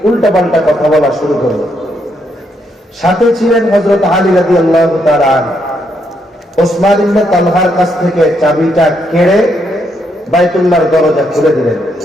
উল্টাপাল্টা কথা বলা শুরু করলো। সাথে ছিলেন হযরত আলী রাদিয়াল্লাহু তাআলা আনহু। ওসমান ইবনে তালহার কাছ থেকে চাবিটা কেড়ে বাইতুল্লাহর দরজা খুলে দিলেন।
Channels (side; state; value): both; normal; correlation 0.76